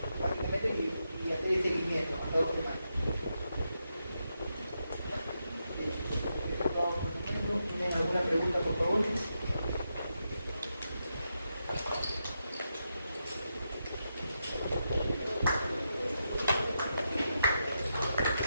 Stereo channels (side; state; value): both; inverted; correlation -0.85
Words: básicamente, y hacer el seguimiento hasta 2 semanas. ¿Tienen alguna pregunta, por favor?